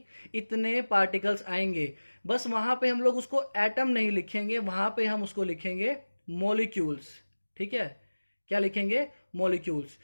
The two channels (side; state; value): both; inverted; correlation -1.00